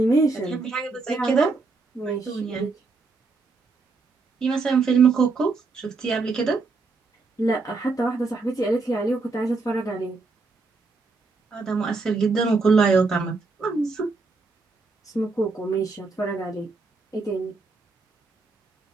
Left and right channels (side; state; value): left; quieter; 3.9 dB